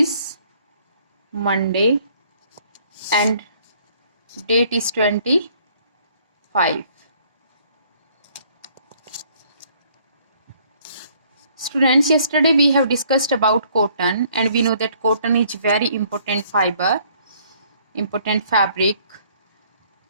Monday and date is 25. Students, yesterday we have discussed about cotton and we know that cotton is very important fiber, important fabric.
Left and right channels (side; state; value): both; inverted; correlation -0.62